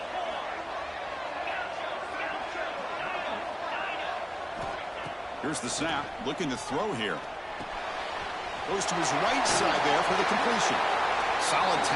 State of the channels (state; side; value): identical; both; correlation 1.00